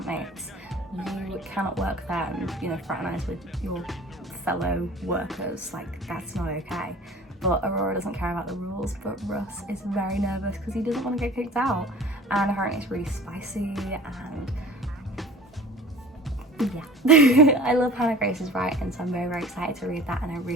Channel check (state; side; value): normal; both; correlation 0.44